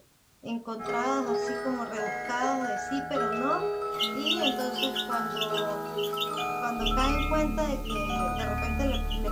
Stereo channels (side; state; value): both; identical; correlation 1.00